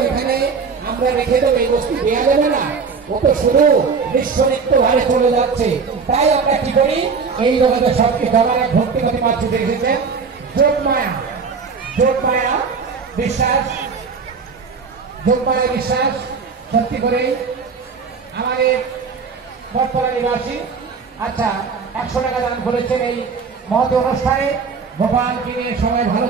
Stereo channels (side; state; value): left; quieter; 5.3 dB